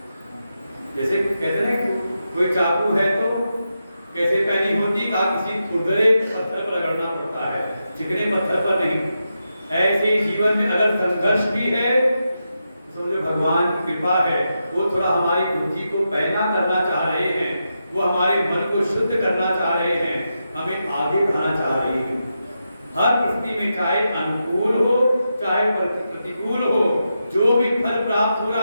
जैसे कहते हैं कि कोई चाकू है तो कैसे पैनी होती, कहा किसी खुरदरे पत्थर पर रगड़ना पड़ता है, चिकने पत्थर पर नहीं। ऐसे जीवन में अगर संघर्ष भी है, समझो भगवान की कृपा है, वो थोड़ा हमारी बुद्धि को पैना करना चाह रहे हैं, वो हमारे मन को शुद्ध करना चाह रहे हैं, हमें आगे बढ़ाना चाह रहे हैं। हर परिस्थिति में चाहे अनुकूल हो चाहे प्रतिकूल हो, जो भी फल प्राप्त हो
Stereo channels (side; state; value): both; inverted; correlation -0.87